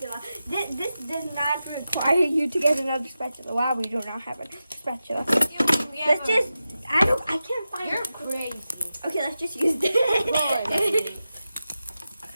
This does not require you to get another spatula. Wow, we do not have a spatula. Let's just. I can't find. You're crazy. Okay, let's just use this. Boy.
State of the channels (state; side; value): inverted; both; correlation -0.92